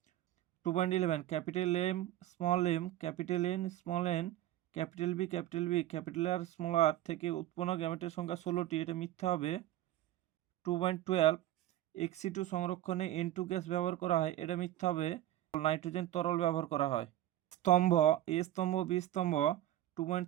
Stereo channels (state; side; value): quieter; left; 13.6 dB